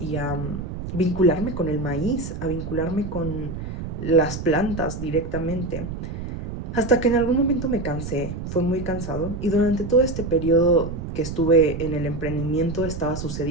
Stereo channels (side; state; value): right; noise; rumble, 7 dB below the sound